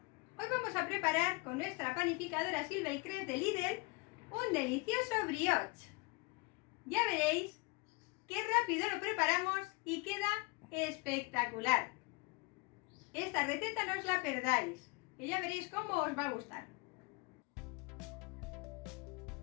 Hoy vamos a preparar con nuestra panificadora Silva y Cres de Lidl un delicioso brioche. Ya veréis qué rápido lo preparamos y queda espectacular. Esta receta no os la perdáis y ya veréis cómo os va a gustar.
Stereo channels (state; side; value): quieter; right; 27.6 dB